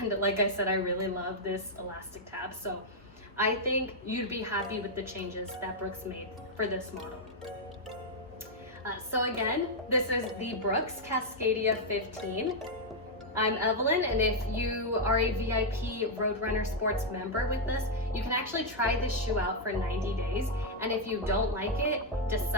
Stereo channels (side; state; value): both; normal; correlation -0.02